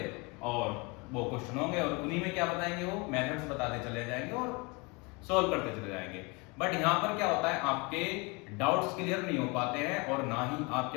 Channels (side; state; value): right; quieter; 28.3 dB